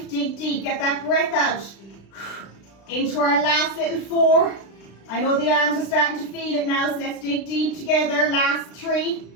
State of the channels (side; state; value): right; late; 36 ms